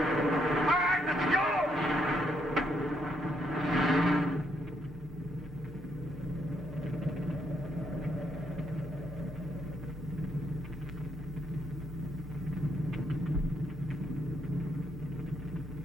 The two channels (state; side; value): normal; both; correlation 0.75